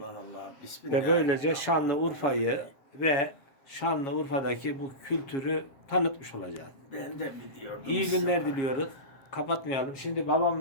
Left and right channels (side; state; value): right; late; 7.4 ms